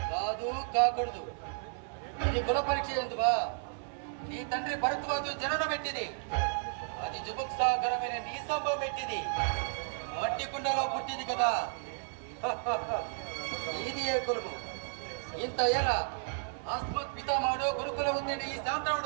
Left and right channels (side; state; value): left; silent; 56 dB below the other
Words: కాకూడదు ఇది కుల పరీక్ష ఎందువా నీ తండ్రి భరద్వాజు జననం పెట్టింది అది జుభుక్సాకరమైన నీ సంభవం పెట్టింది మట్టి కుండలో పుట్టింది కదా ఇది ఏ కులము ఇంత ఏలా ఆస్మత్ పితామహుడు గురుకుల ఉత్తేడి ఈ